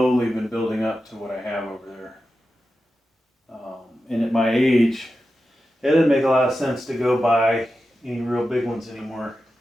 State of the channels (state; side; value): normal; both; correlation 0.91